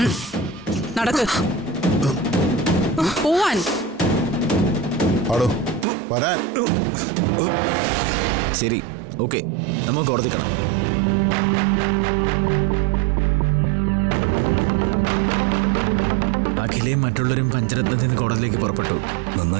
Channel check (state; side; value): drops out; left; at 5.9 s